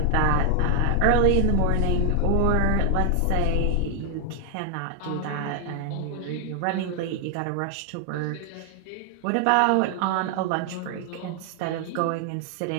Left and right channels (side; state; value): both; different; correlation 0.00